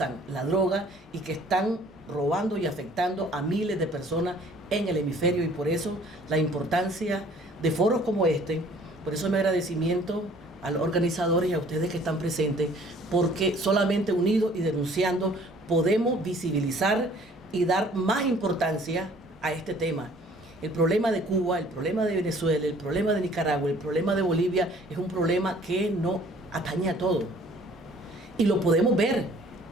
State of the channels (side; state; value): both; normal; correlation 0.55